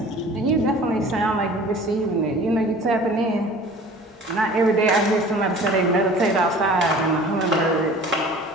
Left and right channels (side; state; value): both; normal; correlation 0.45